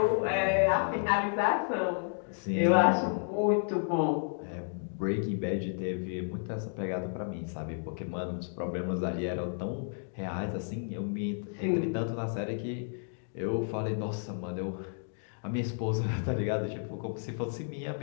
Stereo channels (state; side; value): silent; right; digital silence